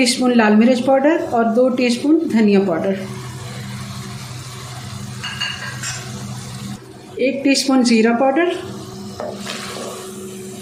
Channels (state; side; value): identical; both; correlation 1.00